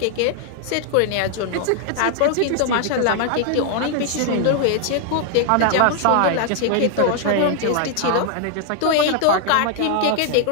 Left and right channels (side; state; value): both; different; correlation 0.00